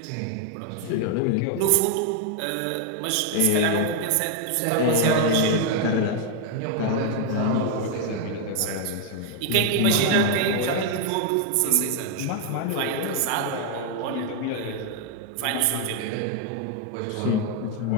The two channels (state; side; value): different; both; correlation 0.00